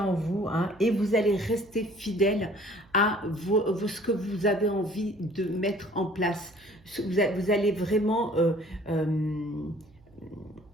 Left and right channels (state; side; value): noise; right; hum, 28 dB below the sound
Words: vous et vous allez rester fidèle à ce que vous avez envie de mettre en place. Vous allez vraiment